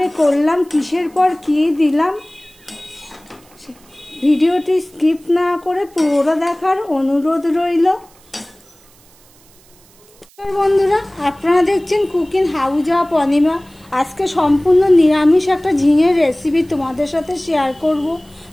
করলাম, কিসের পর কী দিলাম, ভিডিওটি স্কিপ না করে পুরোটা দেখার অনুরোধ রইল। বন্ধুরা, আপনারা দেখছেন কুকিং হাউস অফ অনিমা। আজকে সম্পূর্ণ নিরামিষ একটা ঝিঙের রেসিপি তোমাদের সাথে শেয়ার করব।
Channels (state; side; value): noise; right; hiss, 29 dB below the sound